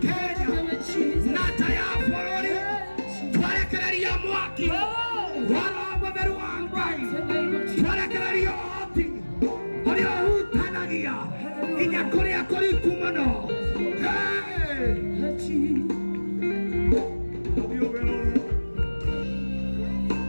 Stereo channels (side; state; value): both; inverted; correlation -1.00